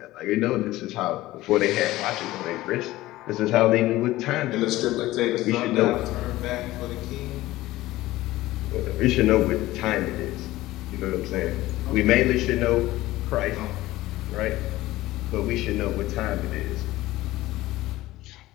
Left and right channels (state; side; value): quieter; right; 17.1 dB